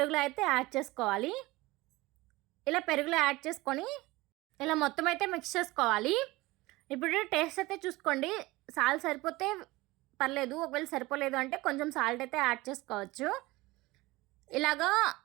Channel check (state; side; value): quieter; left; 20.5 dB